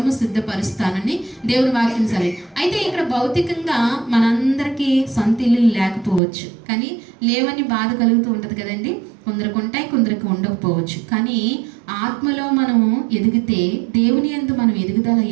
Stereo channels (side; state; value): left; drops out; at 6.2 s